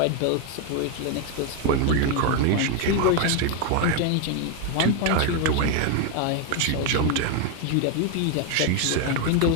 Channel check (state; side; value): different; both; correlation 0.01